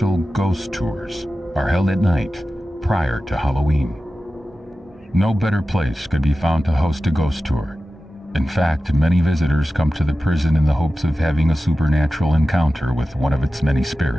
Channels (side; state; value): both; normal; correlation 0.94